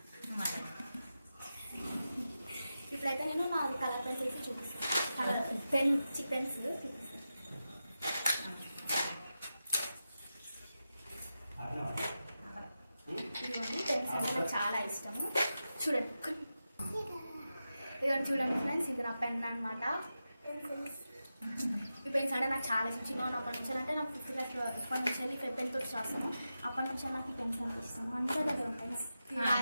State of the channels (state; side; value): inverted; both; correlation -0.91